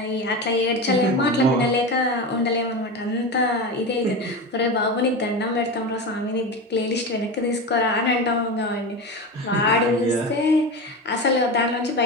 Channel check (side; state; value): both; normal; correlation 0.23